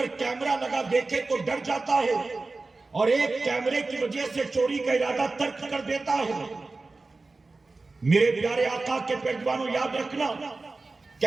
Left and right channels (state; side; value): quieter; left; 3.5 dB